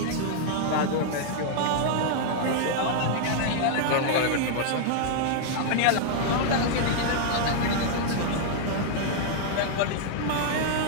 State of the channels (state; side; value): different; both; correlation -0.01